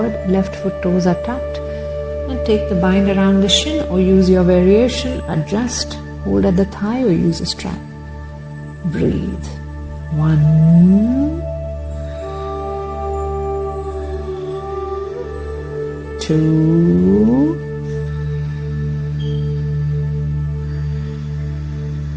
left foot toes are tucked, and take the bind around the shin or use your variation, adjust, hold at the thigh or use a strap. Breathe. 1. 2.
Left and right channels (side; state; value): both; identical; correlation 1.00